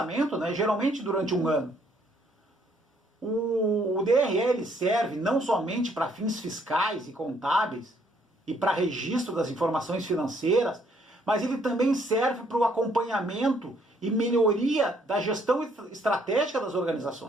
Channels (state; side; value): normal; both; correlation 0.67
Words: geralmente durante um ano. O DRE ele serve não somente para fins fiscais e contábeis e para registro das informações financeiras, mas ele também serve para o acompanhamento e melhoria da gestão estratégica das